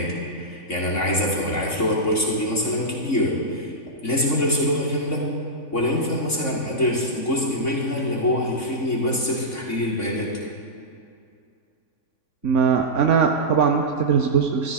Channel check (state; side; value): late; right; 3.6 ms